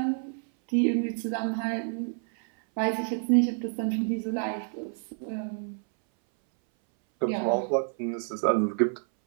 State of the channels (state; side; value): silent; left; 59 dB below the other